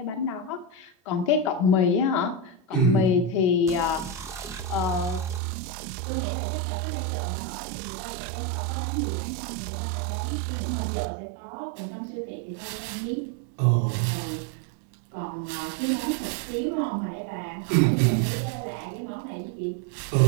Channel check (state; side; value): drops out; left; at 5.4 s